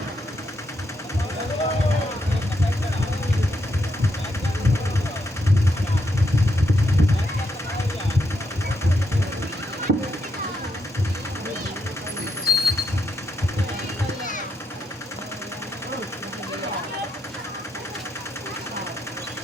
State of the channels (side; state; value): both; normal; correlation 0.80